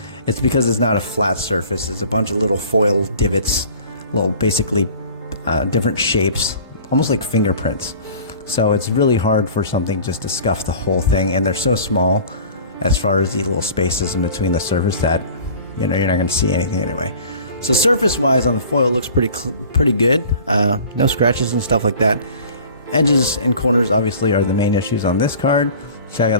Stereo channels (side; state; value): both; inverted; correlation -0.45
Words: it's because it's not a flat surface. It's a bunch of little foil divots, little basically different shapes, almost like fingerprints. So it's really hard for something just to scuff the whole thing, and they're so small as far as the little spaces in between the surface that you're not going to see anything anyway. So surface wise on the foil looks pretty good. No scratches and stuff like that. Edges and corners obviously are the main issues on this card. Check out